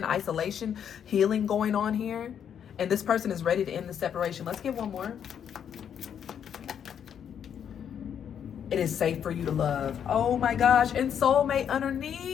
isolation, healing going on here, and this person is ready to end the separation. Let's get one more. It is safe for you to love. Oh my gosh, and soulmate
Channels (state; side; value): quieter; right; 8.5 dB